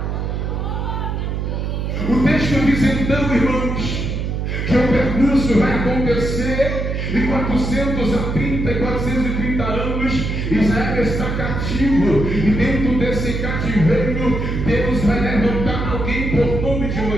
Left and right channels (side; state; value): right; noise; hum, 2 dB below the sound